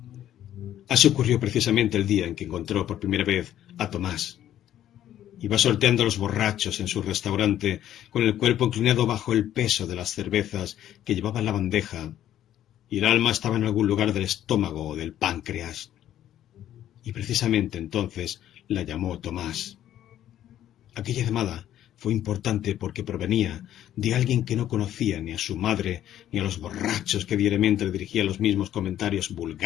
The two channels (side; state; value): right; quieter; 11.8 dB